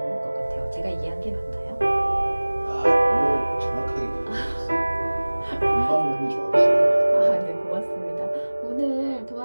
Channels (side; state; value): both; inverted; correlation -1.00